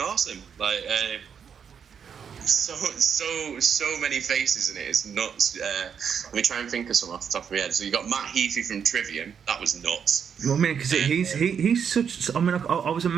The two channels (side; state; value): left; quieter; 7.3 dB